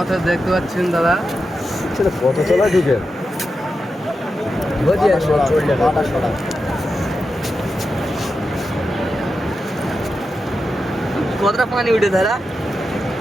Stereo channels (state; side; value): normal; both; correlation 0.89